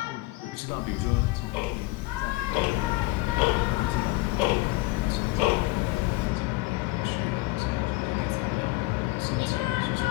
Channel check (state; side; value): quieter; right; 21.1 dB